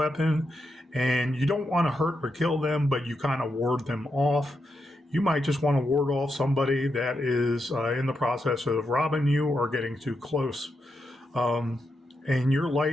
and you don't want to hurt or kill them, but you kind of ward them off. You might just want to ward off somebody that is in the process of robbing you or getting too close. And your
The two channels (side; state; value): both; normal; correlation 0.84